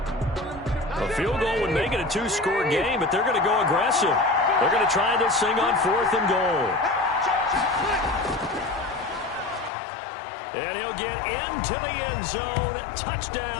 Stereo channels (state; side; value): drops out; right; at 9.7 s